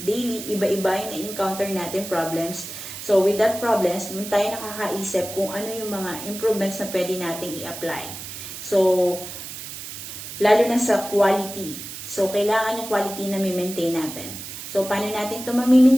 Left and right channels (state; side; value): noise; right; hiss, 10 dB below the sound